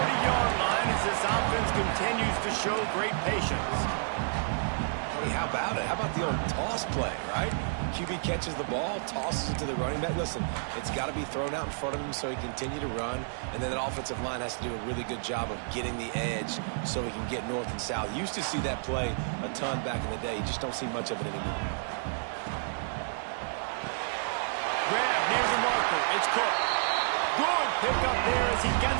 line as this offense continues to show great patience. Hey, how about it? How about the old toss play, right? QB catches the ball, tosses it to the running back. Listen, it's got to be thrown out in front of him so he can continue to run. And then that offensive line has to do a really good job of getting the edge so he can get north and south. You used to see that play a ton back in the day. You just don't see much of it anymore. Grab near the marker. It's Cook. Good pickup there as he gets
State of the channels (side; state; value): left; silent; digital silence